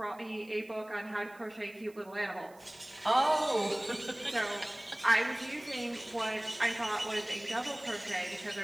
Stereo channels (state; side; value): noise; right; hiss, 27 dB below the sound